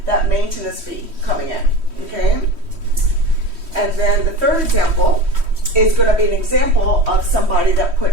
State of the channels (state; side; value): late; left; 3.1 ms